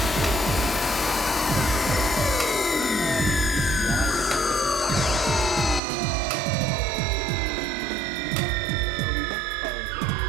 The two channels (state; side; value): drops out; left; at 5.8 s